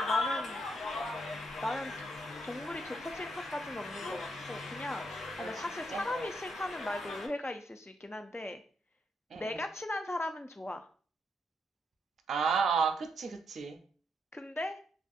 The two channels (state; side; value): normal; both; correlation 0.77